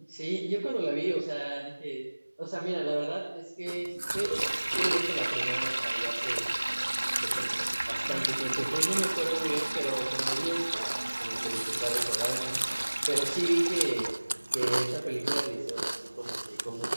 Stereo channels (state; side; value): inverted; both; correlation -1.00